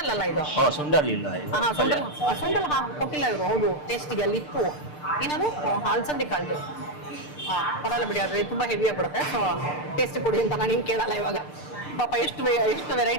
ಅಲ್ಲ ಇದು. ಸುಂಡಲ್ ಇಲ್ಲ. ಹಾ ಸುಂಡಲ್ ಕೊಟ್ಟಿಲ್ಲ ಇವರು. ಹೌದು, ಟೇಸ್ಟಿಗೆ ಅಲ್ಲಿ ಇತ್ತು. ಏನದು ಅಲಸಂದಿ ಕಾಳ್ದು. ಹಾ ಪರಲ್ಲ ಬಿಡಿ, ಆದ್ರೆ ತುಂಬಾ ಹೆವಿ ಆಗ್ಬಿಡುತ್ತೆ. ಸೊ ಟೇಸ್ಟ್ ಕೊಡಿ ಅಂತ ನಾನು ನಿಮ್ಗೆ ಕೇಳಲ್ಲ ಇವಾಗ. ಪಾಪ ಎಷ್ಟು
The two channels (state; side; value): late; right; 6.7 ms